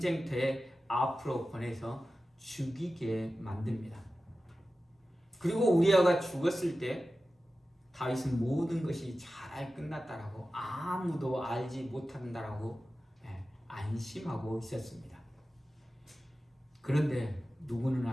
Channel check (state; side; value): normal; both; correlation 0.94